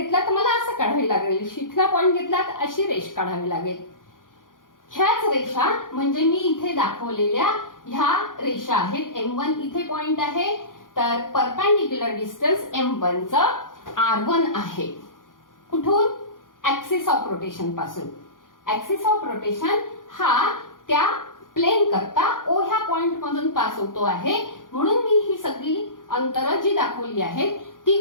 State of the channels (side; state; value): right; late; 0.89 ms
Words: तर मला असं काढावे लागेल, शिखला पॉइंट घेतला तर अशी रेष काढावी लागेल. ह्याच रेषा म्हणजे मी इथे दाखवलेल्या ह्या रेषा आहेत. M1 इथे पॉइंट आहे तर परपेंडिक्युलर डिस्टन्स M1 चं R1 आहे. कुठून, ऍक्सिस ऑफ रोटेशन पासून. ऍक्सिस ऑफ रोटेशन हा त्या प्लेन करता ओ ह्या पॉइंट मधून पास होतो आहे, म्हणून मी ही सगळी अंतरं जी दाखवली आहेत